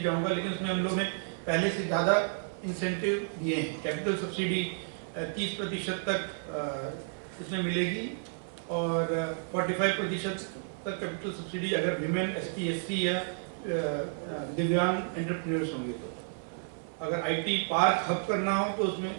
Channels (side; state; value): left; silent; 56 dB below the other